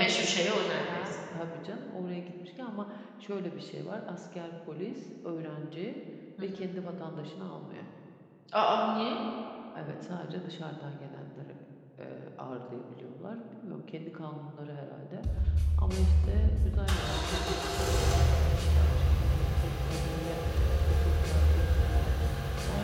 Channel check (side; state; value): both; identical; correlation 1.00